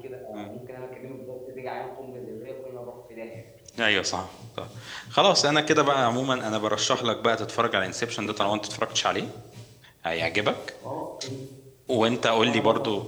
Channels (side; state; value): both; identical; correlation 1.00